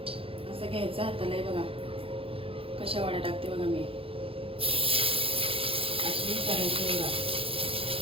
असं घ्यायचं हाताला. आहे बघा कशा वड्या टाकते बघा मी. अशी करायची बघा,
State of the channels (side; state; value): left; late; 0.27 ms